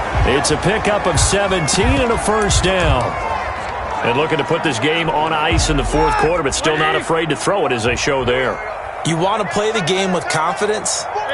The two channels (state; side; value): identical; both; correlation 1.00